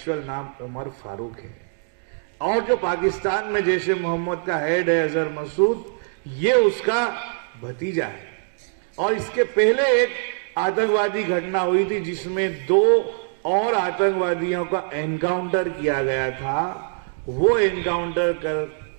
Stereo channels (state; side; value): silent; left; digital silence